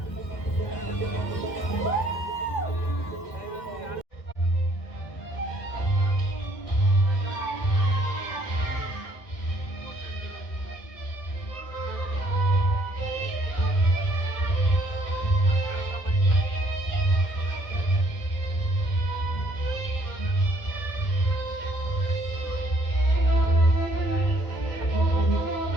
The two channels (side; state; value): right; late; 1.7 ms